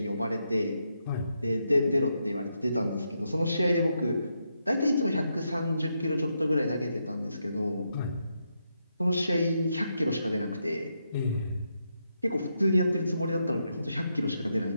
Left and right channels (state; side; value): inverted; both; correlation -0.82